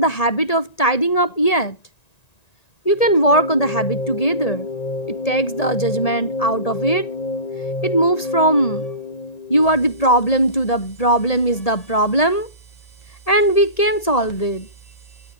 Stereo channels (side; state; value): right; late; 1.7 ms